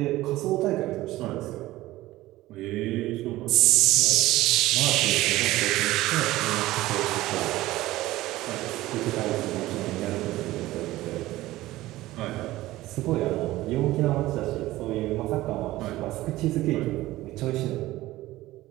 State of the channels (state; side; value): quieter; left; 17.0 dB